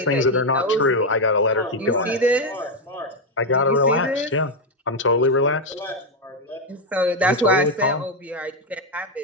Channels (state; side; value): normal; both; correlation 0.04